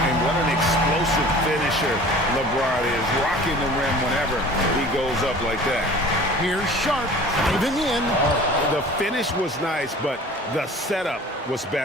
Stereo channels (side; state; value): both; normal; correlation 0.44